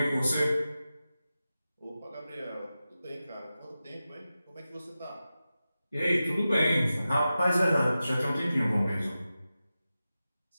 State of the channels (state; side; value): inverted; both; correlation -0.93